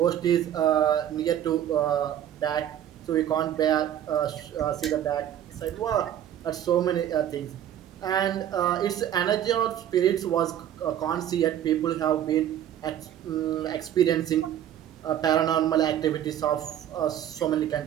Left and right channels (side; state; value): left; quieter; 10.8 dB